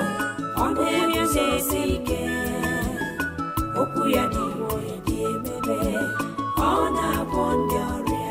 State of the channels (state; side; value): identical; both; correlation 1.00